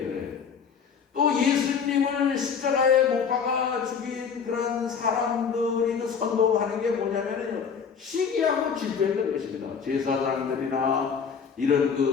또 예수님을 십자가에 못 박아 죽인 그런 사람들이 그 선동하는 게 뭐냐면요, 시기하고 질투했던 것입니다. 제사장들이나 이런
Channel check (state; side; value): quieter; right; 6.5 dB